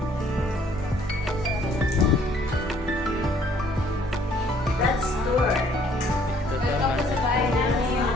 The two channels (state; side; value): normal; both; correlation 0.61